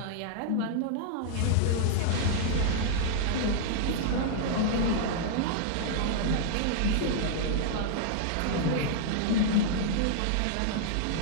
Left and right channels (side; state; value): both; different; correlation -0.02